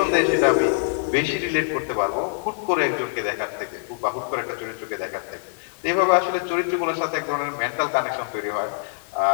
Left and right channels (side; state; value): right; silent; 63 dB below the other